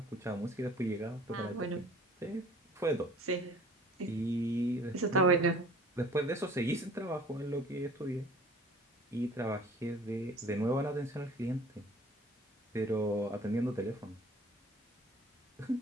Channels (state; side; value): normal; both; correlation 0.49